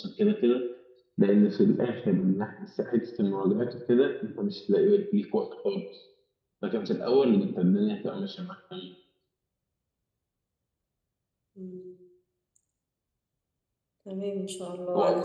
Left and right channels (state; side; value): identical; both; correlation 1.00